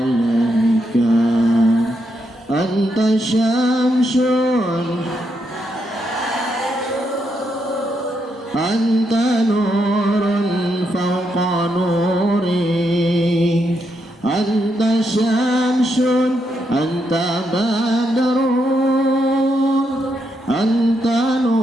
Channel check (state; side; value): normal; both; correlation 0.80